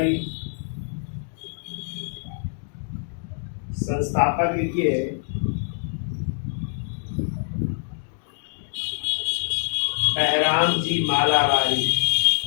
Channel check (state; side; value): silent; right; 62 dB below the other